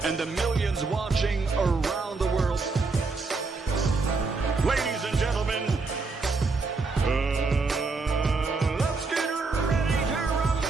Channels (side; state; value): left; quieter; 4.1 dB